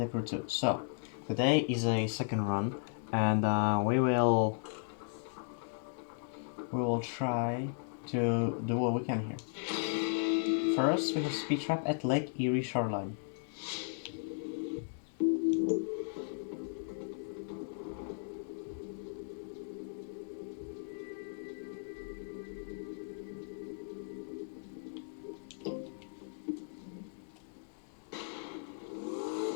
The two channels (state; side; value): silent; right; digital silence